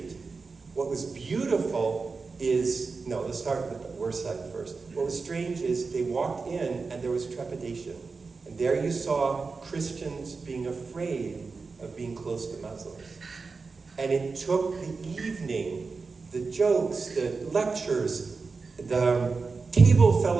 What was beautiful is, let's start with the worst side first. What was strange is they walked in and there was trepidation. And there you saw Christians being afraid of being close to Muslims. And it took the evening, the jokes, the lectures, the table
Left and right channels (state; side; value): quieter; left; 4.4 dB